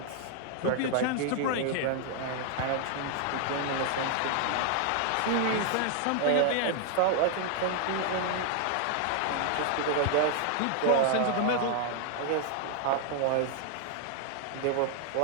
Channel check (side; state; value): both; different; correlation 0.00